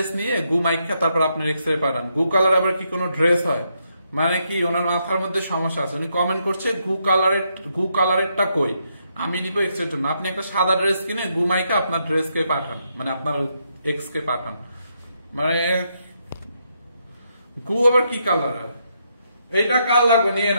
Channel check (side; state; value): both; inverted; correlation -0.78